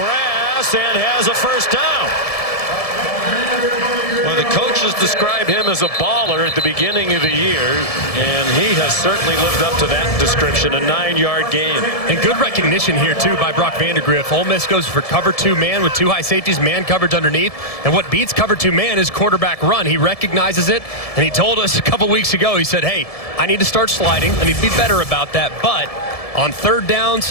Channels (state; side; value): late; right; 1.7 ms